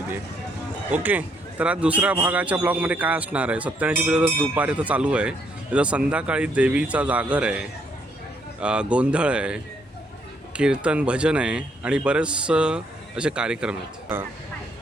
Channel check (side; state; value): both; normal; correlation 0.71